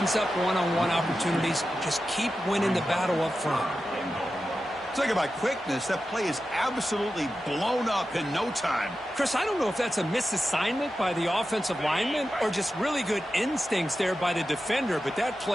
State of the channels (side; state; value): both; normal; correlation 0.92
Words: up one-on-one opportunities. Just keep winning the battle up front. Talk about quickness. That play is absolutely blown up in no time. Chris, I don't know if that's a misassignment by the offensive lineman or just really good instincts there by the defender, but that